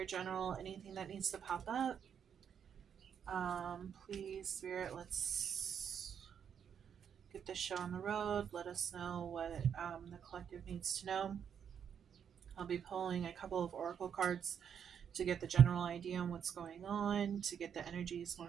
general, anything that needs to pop up. Please, Spirit, let's get this show on the road. Let us know what the collective needs to know. I'll be pulling a couple of oracle cards to get the general idea on what's going on, to get the energies more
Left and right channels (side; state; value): left; quieter; 8.0 dB